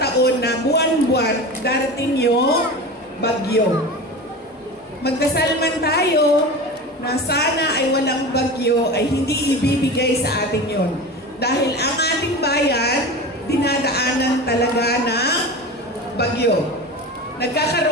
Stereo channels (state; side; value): normal; both; correlation 0.30